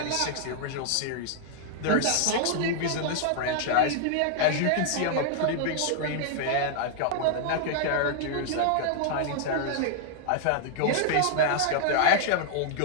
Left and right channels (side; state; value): both; different; correlation -0.01